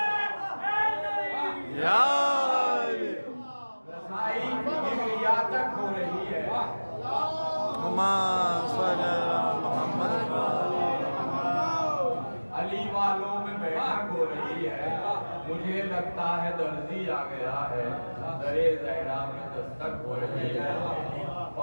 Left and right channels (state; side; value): inverted; both; correlation -1.00